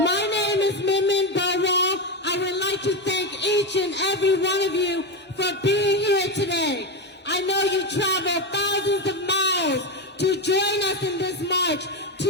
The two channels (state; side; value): normal; both; correlation 0.13